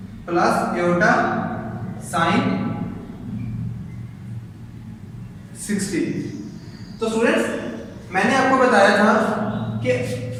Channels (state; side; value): identical; both; correlation 1.00